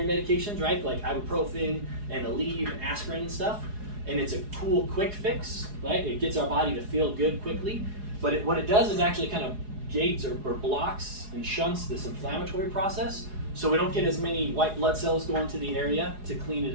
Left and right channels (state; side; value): late; left; 4.8 ms